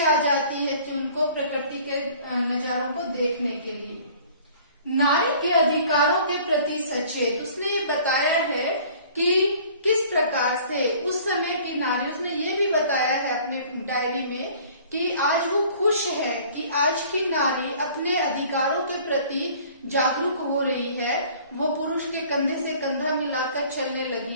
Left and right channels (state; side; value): inverted; both; correlation -0.51